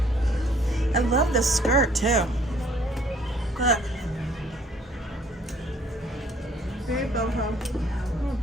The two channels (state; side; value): normal; both; correlation 0.60